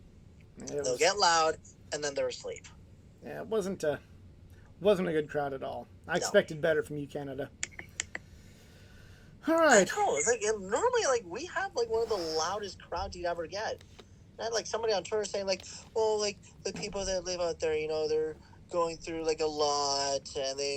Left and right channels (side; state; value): both; identical; correlation 1.00